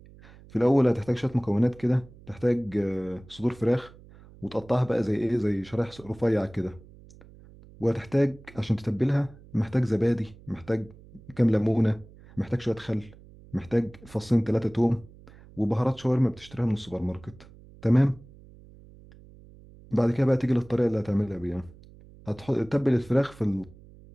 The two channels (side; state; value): right; noise; hum, 22 dB below the sound